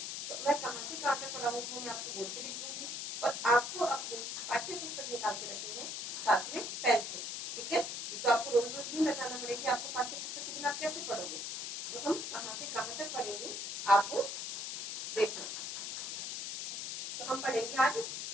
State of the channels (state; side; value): noise; left; hiss, 5 dB below the sound